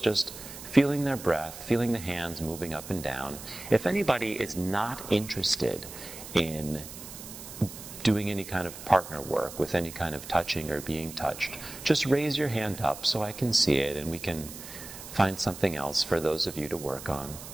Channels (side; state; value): right; noise; hiss, 13 dB below the sound